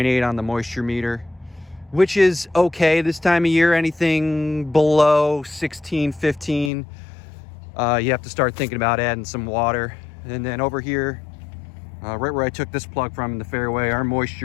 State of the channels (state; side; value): drops out; right; at 6.7 s